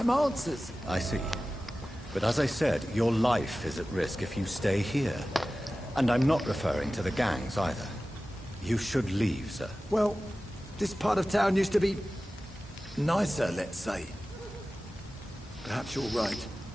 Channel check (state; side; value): normal; both; correlation 0.96